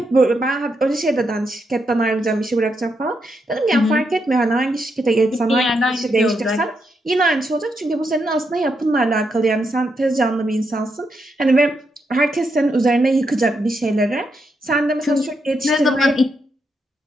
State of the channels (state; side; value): normal; both; correlation 0.81